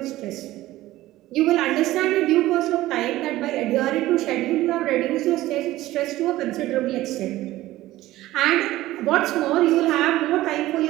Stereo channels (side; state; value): left; quieter; 16.2 dB